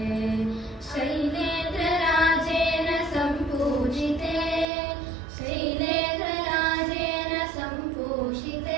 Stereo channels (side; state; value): left; drops out; at 4.7 s